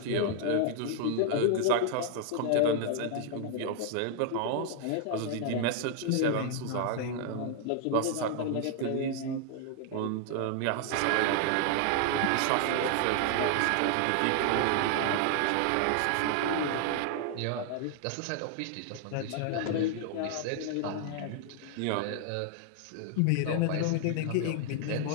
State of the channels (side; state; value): both; different; correlation 0.00